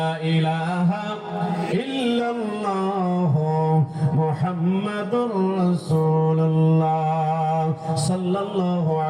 ইলাহা ইল্লাল্লাহ মুহাম্মাদুর রাসূলুল্লাহ সাল্লাল্লাহু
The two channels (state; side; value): identical; both; correlation 1.00